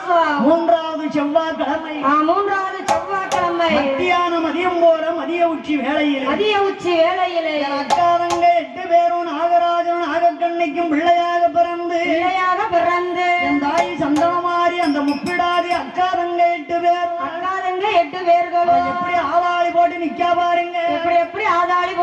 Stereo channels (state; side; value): identical; both; correlation 1.00